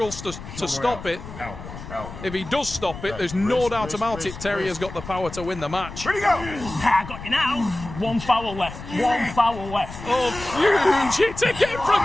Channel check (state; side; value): noise; left; rumble, 12 dB below the sound